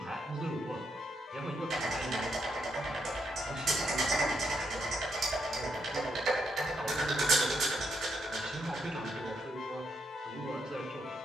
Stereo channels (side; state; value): both; normal; correlation 0.78